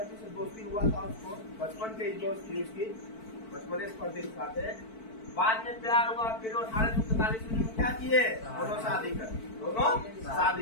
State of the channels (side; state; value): right; late; 4.5 ms